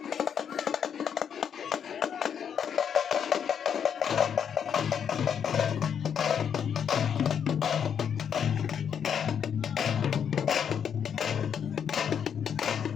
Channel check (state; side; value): quieter; right; 8.0 dB